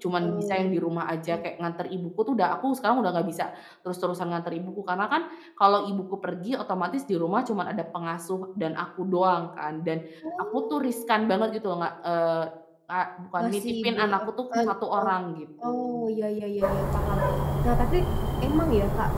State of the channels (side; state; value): both; identical; correlation 1.00